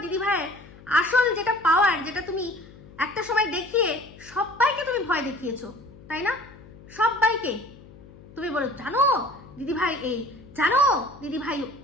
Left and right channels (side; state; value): left; noise; hum, 21 dB below the sound